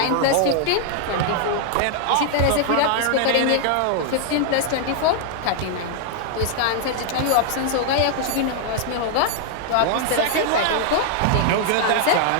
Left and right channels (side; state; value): both; different; correlation -0.01